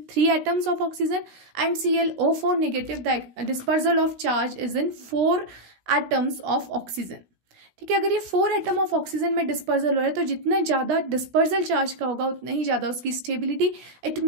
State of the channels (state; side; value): late; left; 16 ms